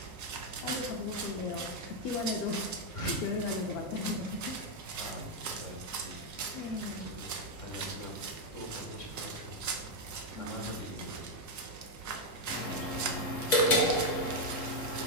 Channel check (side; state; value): right; late; 3.7 ms